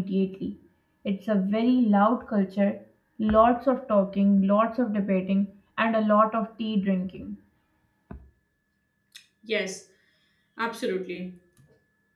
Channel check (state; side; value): identical; both; correlation 1.00